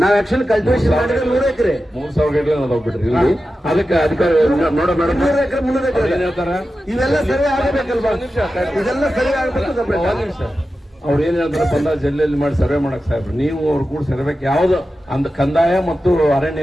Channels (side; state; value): both; normal; correlation 0.92